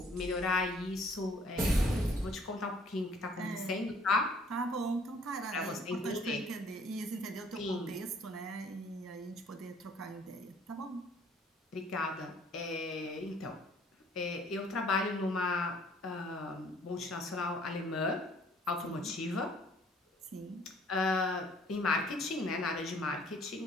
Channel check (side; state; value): both; normal; correlation 0.59